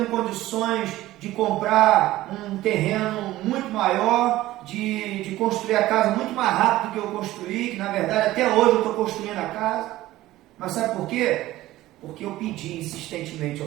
condições de comprar um terreno muito maior, de construir a casa muito mais rápido do que eu construí, que na verdade até hoje eu estou construindo a casa. Mas sabe por quê? Porque eu pedi insistentemente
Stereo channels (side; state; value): left; quieter; 16.1 dB